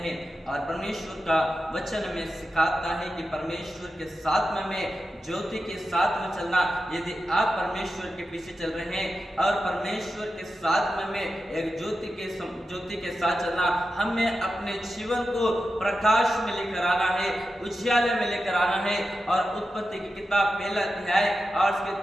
और परमेश्वर का वचन में सिखाता है कि परमेश्वर के साथ में ज्योति के साथ में चलना। यदि आप परमेश्वर के पीछे चल रहे हैं और परमेश्वर के साथ में एक ज्योति के साथ चलना, हमें अपने जीवन को प्रकाश में लेकर आना है, उजियाले में लेकर आना है। और उत्पत्ति की किताब पहला अध्याय और उसके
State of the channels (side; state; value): both; normal; correlation 0.91